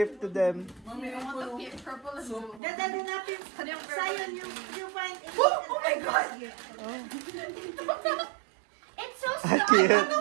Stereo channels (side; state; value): left; drops out; at 2.6 s